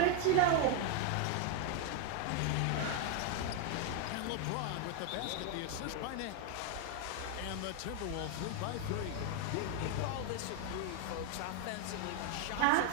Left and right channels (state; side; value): different; both; correlation 0.01